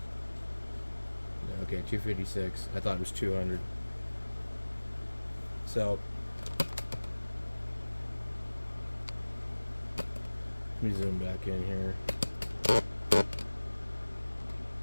okay, 256. I thought it was 200. So let me zoom back in here.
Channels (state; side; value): inverted; both; correlation -1.00